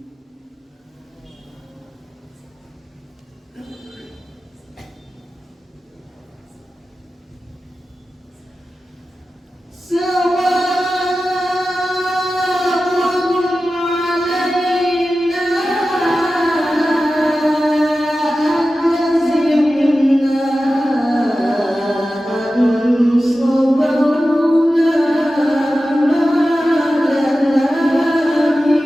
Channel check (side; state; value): both; normal; correlation 0.94